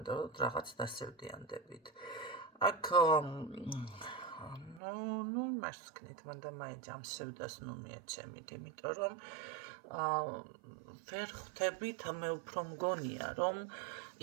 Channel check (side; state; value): left; drops out; at 4.8 s